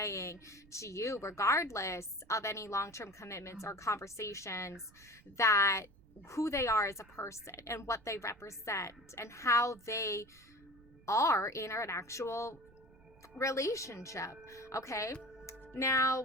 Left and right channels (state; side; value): noise; right; rumble, 26 dB below the sound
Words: to you, regardless of any long-term commitments or conversations, that who they are as a person and what they represent and how they are in an actual relationship. Okay, now